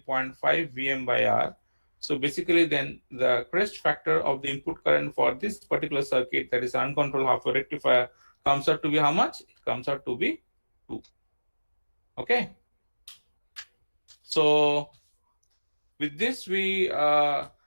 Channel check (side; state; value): both; inverted; correlation -1.00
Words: Vm by R. So basically then the crest factor of the input current for this particular circuit, that is uncontrolled half wave rectifier, comes out to be how much? It comes out to be 2. Okay, so with this we